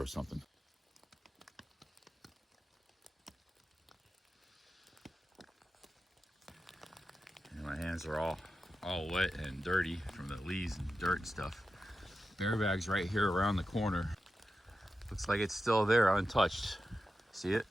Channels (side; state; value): both; normal; correlation 0.91